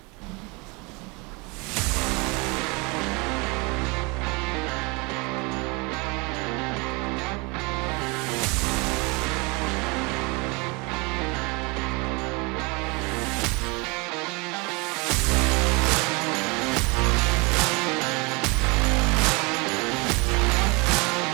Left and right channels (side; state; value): left; quieter; 28.2 dB